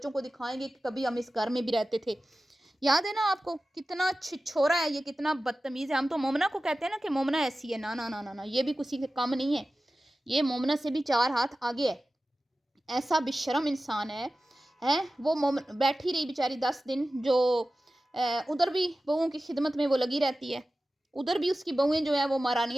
کو دکھائیں گے کہ کبھی ہم اس گھر میں بھی رہتے تھے. یاد ہے نا آپ کو کتنا چھوڑا ہے یہ، کتنا بدتمیز ہے. ہم تو مومنہ کو کہتے ہیں نا کہ مومنہ ایسی ہے، نا یہ بھی کسی سے کم نہیں ہے، یہ مومنہ سے بھی 4 ہاتھ آگے ہے. ایسا بشرم انسان ہے. وہ بیٹھی رہی بیچاری 10 دن، جو ادھر بھی بہوؤں کی خدمت میں وہ لگی رہتی ہے، ادھر بھی اس کی بہویں جو ہیں وہ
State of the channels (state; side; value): normal; both; correlation 0.95